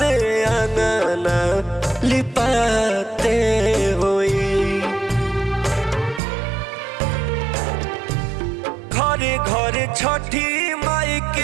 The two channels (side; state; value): left; drops out; at 6.2 s